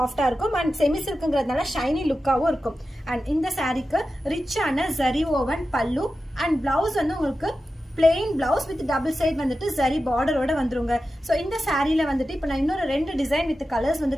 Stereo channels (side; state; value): both; normal; correlation 0.92